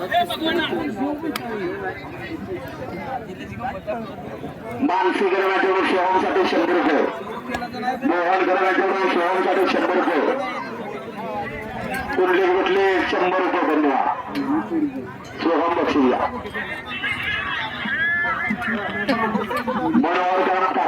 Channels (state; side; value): identical; both; correlation 1.00